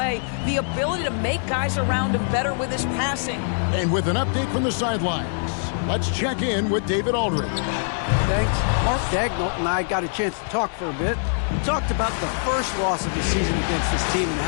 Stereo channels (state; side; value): silent; right; 63 dB below the other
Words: the ability to make guys around him better with his passing. And with an update from the sidelines, let's check in with David Aldridge. Thanks. Mark Daigneault and I got a chance to talk for a bit. We talked about the first loss of the season against this team and